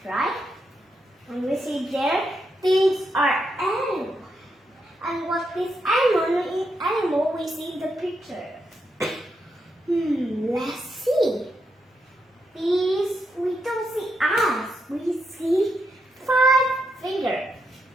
right? And we see there, these are animals. And what is animal we see in the picture? Let's see. These, we don't see eyes. We see 5 fingers,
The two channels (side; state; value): both; normal; correlation 0.82